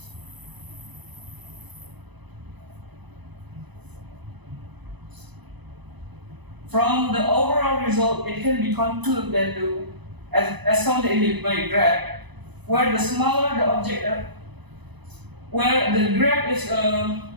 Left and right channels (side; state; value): left; late; 1.0 ms